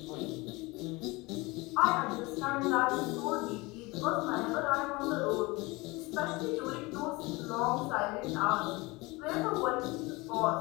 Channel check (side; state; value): right; quieter; 23.8 dB